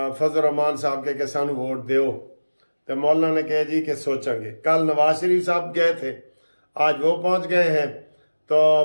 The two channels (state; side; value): inverted; both; correlation -1.00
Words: रहमान साहब के सानू वोट दो, तो मौलाना ने कहा जी कि सोचेंगे। कल नवाज शरीफ साहब गए थे, आज वो पहुंच गए हैं। तो